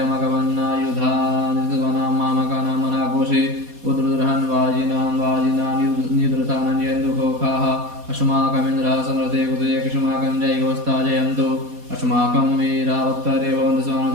मामकानां मनाघोषे उद्रुद्रहन् वाजिनां निद्रतानञ्जयन्दुघोखाः अस्माकमिन्द्रः समृते कुतये कृष्माकं जयगोस्ता जयन्तु अस्माकं वीरावक्तरे भवन्तु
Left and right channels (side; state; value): left; late; 4.2 ms